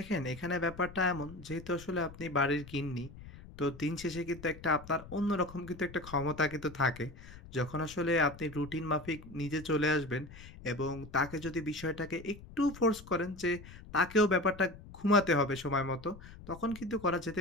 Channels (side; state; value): left; noise; rumble, 17 dB below the sound